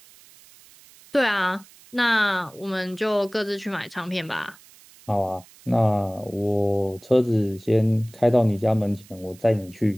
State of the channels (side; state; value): right; noise; hiss, 25 dB below the sound